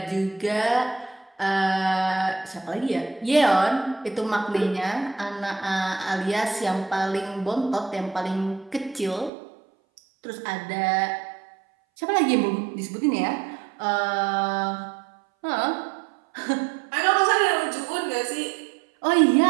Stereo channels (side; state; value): left; drops out; at 9.3 s